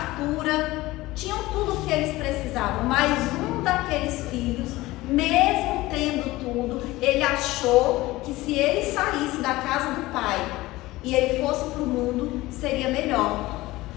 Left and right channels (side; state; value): right; quieter; 18.7 dB